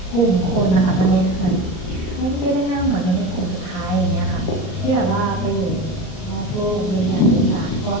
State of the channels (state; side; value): late; right; 38 ms